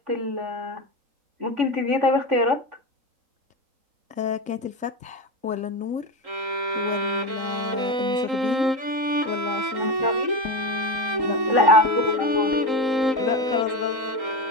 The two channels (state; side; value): late; left; 3.8 ms